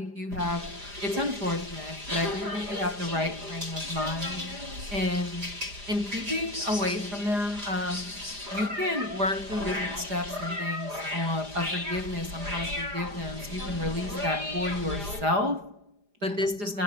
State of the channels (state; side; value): late; left; 4.9 ms